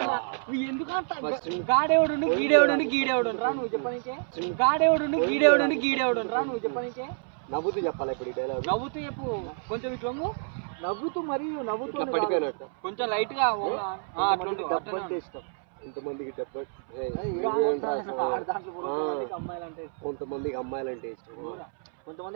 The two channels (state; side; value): silent; left; 59 dB below the other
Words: నువ్వు ఎందుకంట గాడేవుడు గీడేవుడు రా నువ్వు చెప్పనికే, గాడేవుడు గీడేవుడు రా నువ్వు చెప్పనికే. నవ్వుతూ చెప్పాలి ఇప్పుడు ఈ డైలాగ్. నవ్వుతూ చెప్పు కొంచెం ఇట్లా నవ్వుతూ మరియు నవ్వుతూ పడిపోయినట్టు కొంచెం లైట్ గా డబ్బు అంటే ఇష్టం. కొంతమందికి డబ్బు, అమ్మాయిలంటే కొంతమందికి అమ్మాయిలంటే ఇష్టం. కొంతమంది